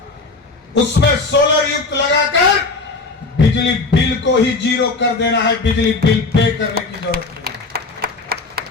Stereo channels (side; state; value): right; quieter; 3.8 dB